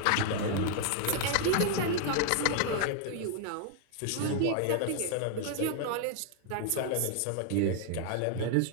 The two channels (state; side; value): different; both; correlation 0.00